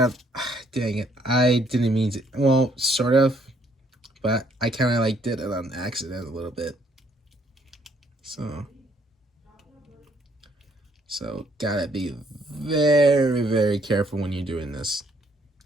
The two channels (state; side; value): normal; both; correlation 0.67